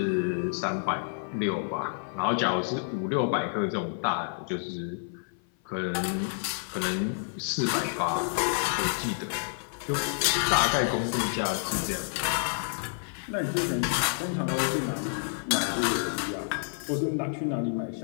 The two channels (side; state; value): right; silent; 55 dB below the other